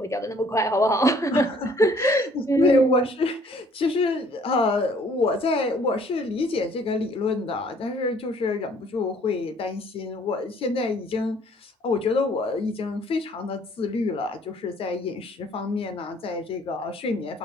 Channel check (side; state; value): both; normal; correlation 0.59